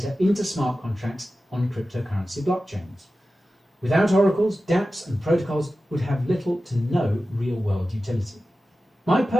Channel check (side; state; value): both; normal; correlation 0.94